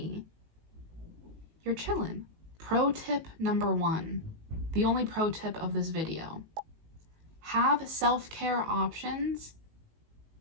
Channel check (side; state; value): left; late; 19 ms